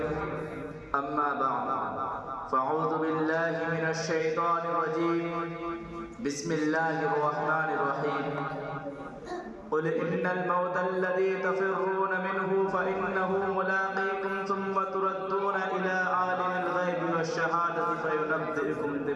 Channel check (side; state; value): both; identical; correlation 1.00